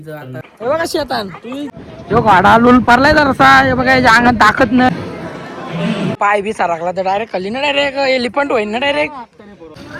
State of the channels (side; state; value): both; identical; correlation 1.00